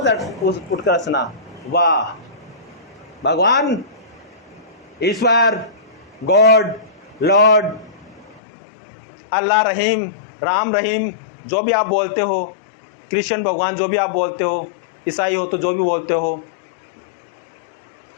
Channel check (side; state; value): right; drops out; at 8.4 s